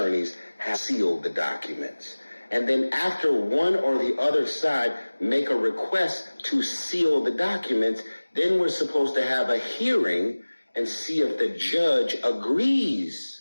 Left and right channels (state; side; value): inverted; both; correlation -1.00